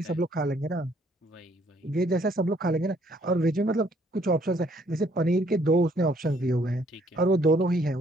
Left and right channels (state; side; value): normal; both; correlation 0.65